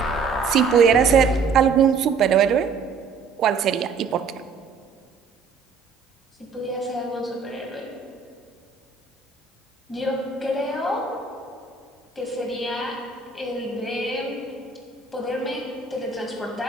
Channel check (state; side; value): quieter; left; 5.1 dB